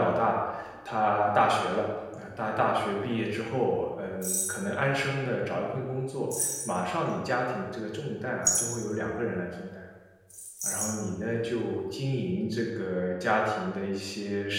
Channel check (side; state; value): both; identical; correlation 1.00